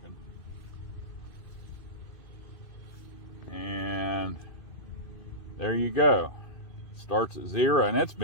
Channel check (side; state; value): right; late; 2.6 ms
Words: And there you go. Starts at 0, and it's